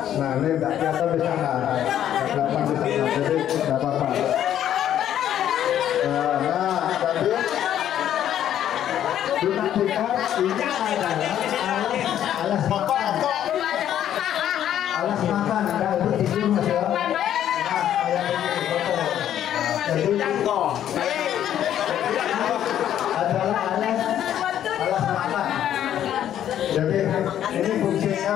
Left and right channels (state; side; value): quieter; right; 10.8 dB